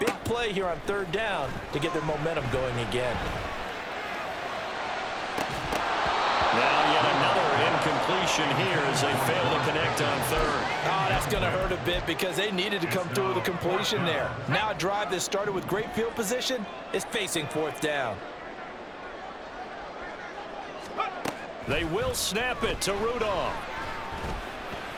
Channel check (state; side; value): identical; both; correlation 1.00